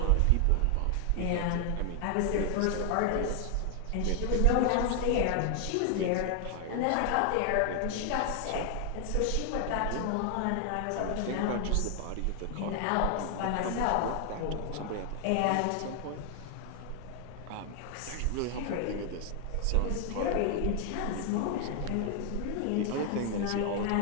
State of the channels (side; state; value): both; different; correlation 0.00